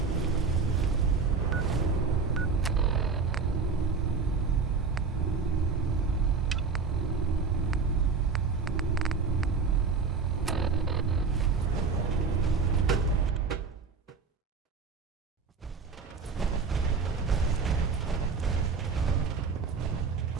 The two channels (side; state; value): left; quieter; 4.9 dB